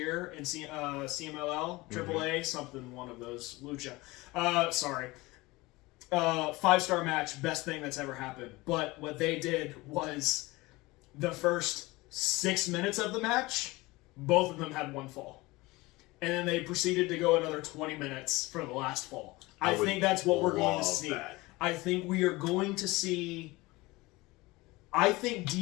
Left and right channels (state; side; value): quieter; right; 21.5 dB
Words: in CMLL, AAA, something, one of those. Lucha. Sorry. 5-star match, best thing that's ever happened. But what they did was the first 6 minutes of the match, both of them had one fall. And then they proceeded to go another 20 minutes for the last fall. I think that's what we're going to see. I think we are going to see... I think